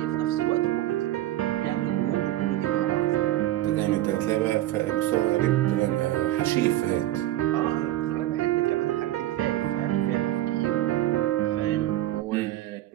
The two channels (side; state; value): left; quieter; 14.5 dB